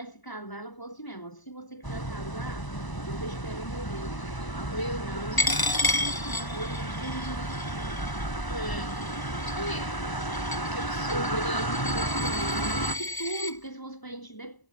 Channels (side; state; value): right; late; 1.0 ms